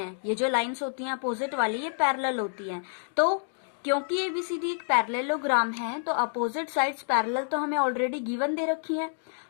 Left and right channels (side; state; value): right; silent; digital silence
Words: ये जो लाइंस होती हैं अपोजिट वाली ये पैरेलल होती हैं। तो क्योंकि ABCD एक पैरेललोग्राम है तो अपोजिट साइड्स पैरेलल तो हमें ऑलरेडी गिवन दे रखी है,